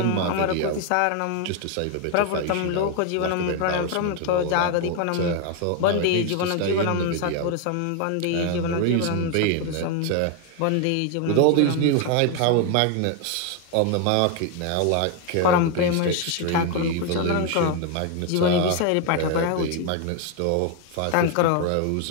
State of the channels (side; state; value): both; different; correlation 0.01